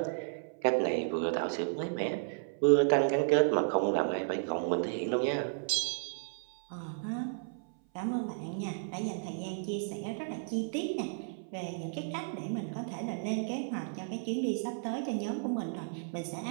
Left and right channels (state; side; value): silent; left; 56 dB below the other